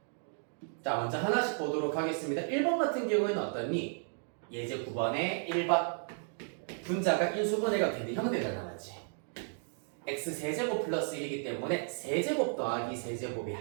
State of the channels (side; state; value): left; silent; 55 dB below the other